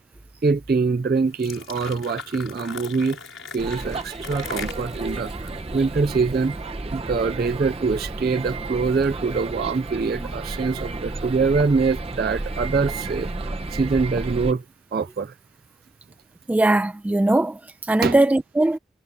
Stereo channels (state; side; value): quieter; left; 3.2 dB